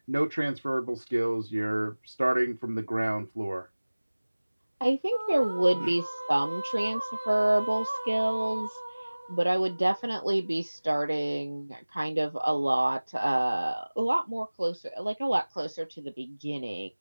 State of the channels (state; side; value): inverted; both; correlation -1.00